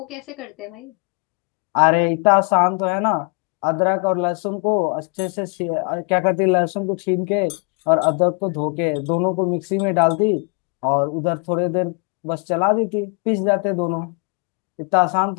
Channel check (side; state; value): right; quieter; 35.3 dB